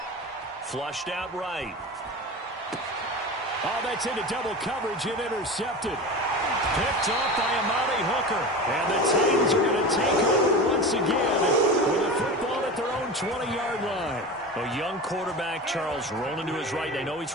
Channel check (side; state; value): both; normal; correlation 0.29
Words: Flushed out right. Oh, that's into double coverage and intercepted. Picked off by Amani Hooker. And the Titans are going to take over once again with a football at their own 20-yard line. A young quarterback, Charles, rolling to his right. I know he's